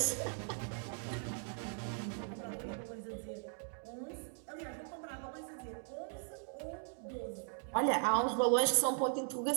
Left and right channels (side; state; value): left; silent; 52 dB below the other